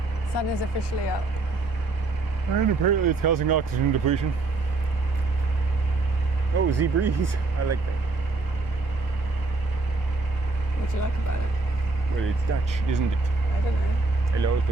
Sun is officially up. And apparently it's causing oxygen depletion. Oh, sea breeze. I like that. What do you like about it? Well, it's Dutch, isn't it? I don't know. Hello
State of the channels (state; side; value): quieter; left; 3.4 dB